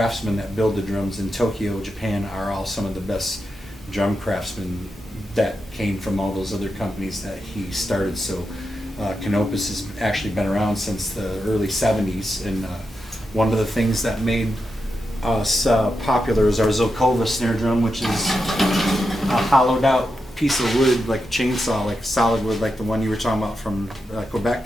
that build the drums in Tokyo, Japan, are all some of the best drum craftsmen that came from all those other companies that he started. So Canopus has actually been around since the early 70s, and one of the things that made us popular is our Zokova snare drum, which is a hollowed out piece of wood, like a chainsaw, like solid wood, like the one you were talking about from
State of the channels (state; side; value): normal; both; correlation 0.88